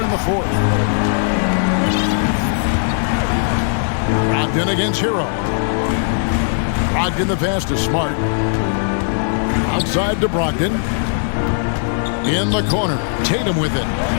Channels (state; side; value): silent; right; digital silence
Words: in the fourth. Brogdon against Hero. Brogdon the pass to Smart. Outside to Brogdon. In the corner. Tatum with it.